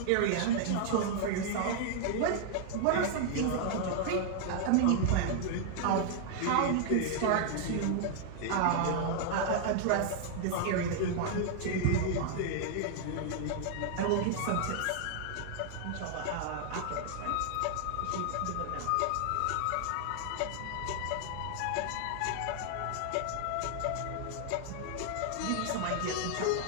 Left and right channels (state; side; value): different; both; correlation -0.01